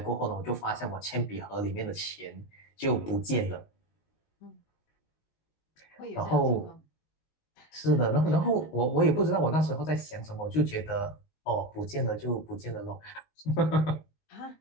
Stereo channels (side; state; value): right; late; 19 ms